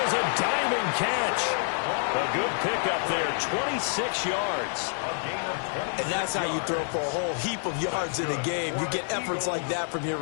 a diving catch. A good pickup there, 26 yards. And that's how you throw for a whole heap of yards in a game. You get efforts like that from your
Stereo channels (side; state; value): right; silent; 59 dB below the other